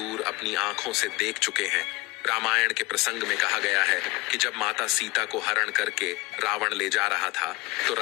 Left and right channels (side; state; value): right; quieter; 22.6 dB